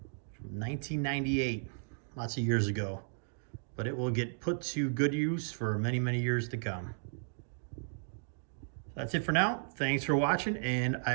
from 1998. Lots of years ago. But it will get put to good use for many, many years to come. That's it for now. Thanks for watching, and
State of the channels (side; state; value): left; silent; digital silence